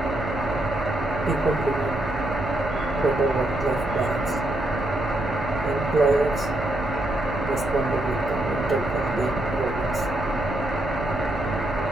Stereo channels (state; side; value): noise; right; hum, 9 dB below the sound